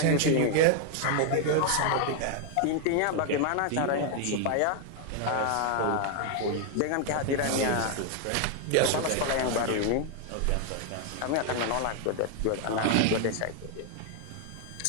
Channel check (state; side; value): different; both; correlation 0.00